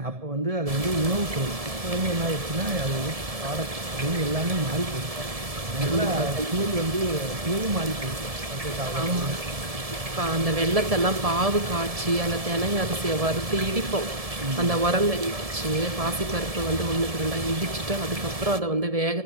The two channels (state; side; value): late; left; 1.7 ms